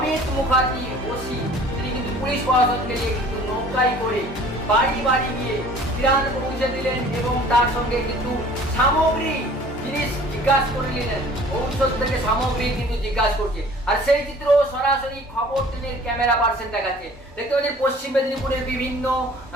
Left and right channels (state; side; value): normal; both; correlation 0.50